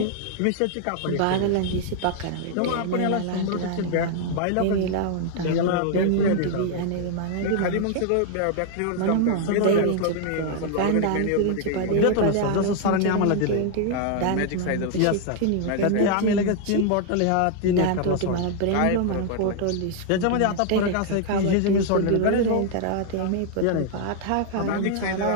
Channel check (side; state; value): both; different; correlation 0.00